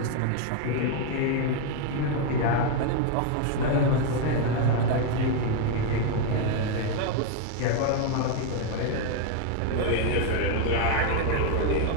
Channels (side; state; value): both; different; correlation 0.01